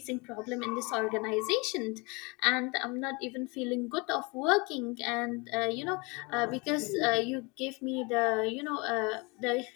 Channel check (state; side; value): quieter; right; 28.0 dB